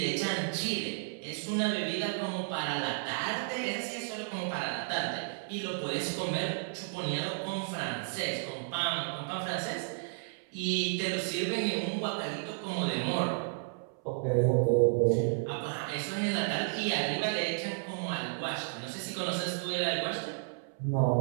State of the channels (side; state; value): left; silent; 56 dB below the other